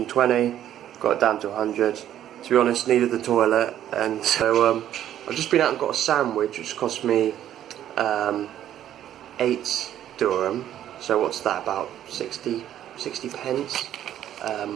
got it down to 100. To be honest, needed the toilet, and so I've just been out and got a sandwich, which cost me 8 dirham. So what's that, about 60 pence?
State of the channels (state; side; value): quieter; left; 11.3 dB